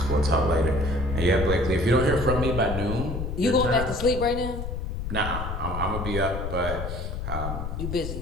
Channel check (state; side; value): noise; left; rumble, 4 dB below the sound